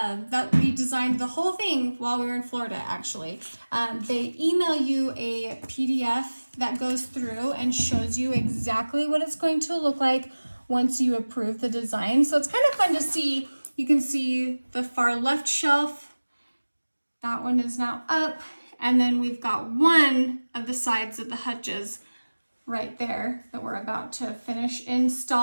we designed the whole thing while we were in Florida, actually. They email you a PDF that goes through and shows you exactly what it's going to look like once you approve the design. So it's kind of fun to see. You can see the far left shelf. That one is now up. And then we've got one of the sides of the hutches right there that we're about to finish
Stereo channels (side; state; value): both; inverted; correlation -1.00